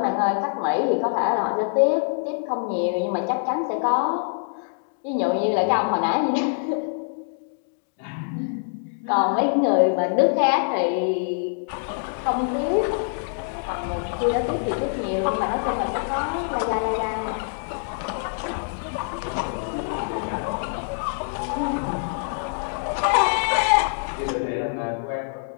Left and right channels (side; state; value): right; silent; digital silence